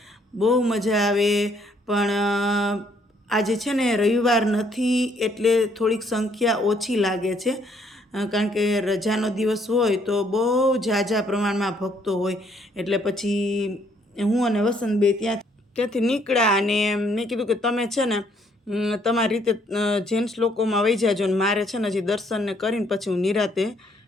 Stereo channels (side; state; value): both; normal; correlation 0.67